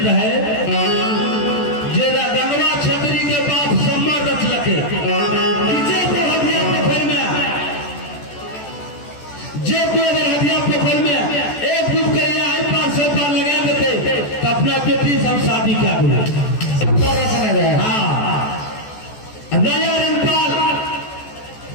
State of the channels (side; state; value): right; late; 14 ms